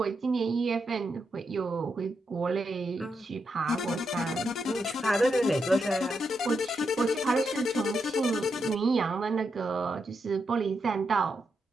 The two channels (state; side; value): normal; both; correlation 0.83